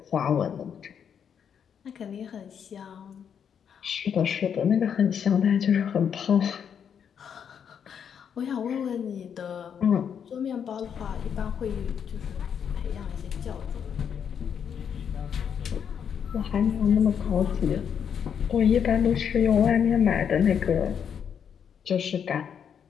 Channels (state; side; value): quieter; right; 7.8 dB